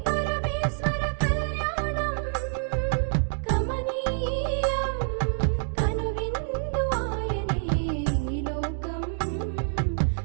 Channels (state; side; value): silent; left; digital silence